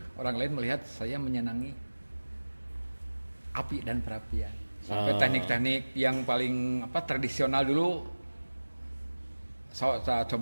orang lain melihat saya menyenangi api dan perapian. Sampai teknik-teknik yang paling tradisional dulu saya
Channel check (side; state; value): both; inverted; correlation -1.00